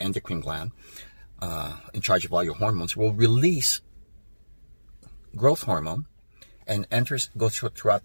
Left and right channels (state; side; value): inverted; both; correlation -1.00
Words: gland, in charge of all your hormones, will release growth hormone and goes throughout